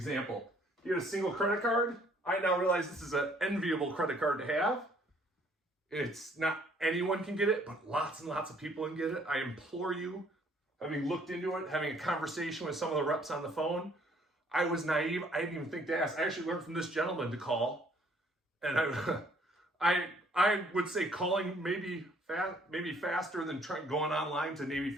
He had a single credit card. I now realize this is an enviable credit card to have. It's not anyone can get it, but lots and lots of people can get it. I implore you, having looked into it, having a conversation with some of the reps on the phone, I was naive. I didn't even think to ask. I actually learned from this gentleman to call, and I would say calling maybe faster than going online to Navy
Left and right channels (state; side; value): normal; both; correlation 0.62